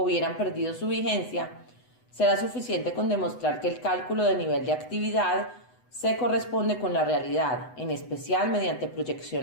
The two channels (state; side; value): late; right; 8.0 ms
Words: hubieran perdido su vigencia, será suficiente con demostrar que el cálculo de nivel de actividad se corresponde con la realidad, en especial mediante